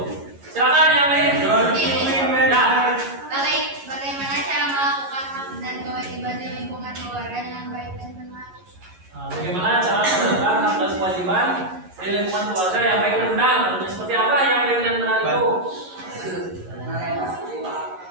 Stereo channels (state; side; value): late; left; 11 ms